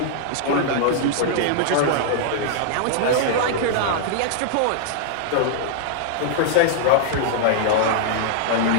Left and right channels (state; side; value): different; both; correlation -0.01